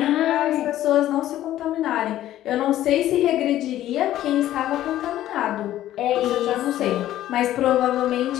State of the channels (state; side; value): quieter; right; 13.3 dB